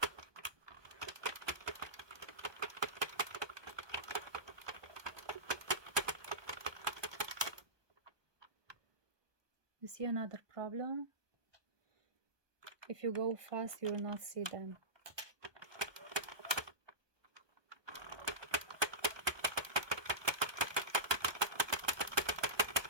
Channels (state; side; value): late; left; 1.2 ms